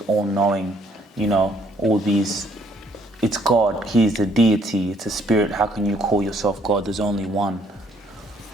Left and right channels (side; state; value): both; normal; correlation 0.66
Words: all-knowing, you know, all these. It's God, He is a deity, it's a spirit. How can you call yourself God? There's only one.